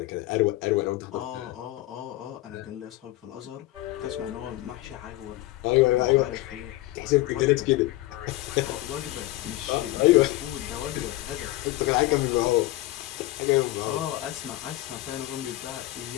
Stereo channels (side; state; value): right; quieter; 17.5 dB